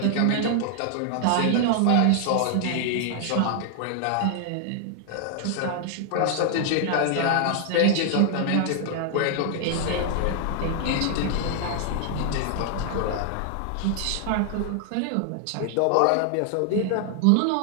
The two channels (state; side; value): different; both; correlation 0.00